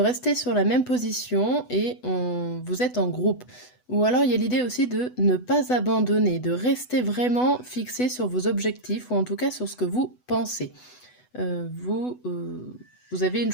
sur la même position et vous êtes en groupe. Ou alors, il y a l'idée aussi de ne pas abandonner, de rester vraiment fixé sur vos objectifs ou en tout cas sur ce que vous pensez. Vous avez une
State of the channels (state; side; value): late; right; 8.0 ms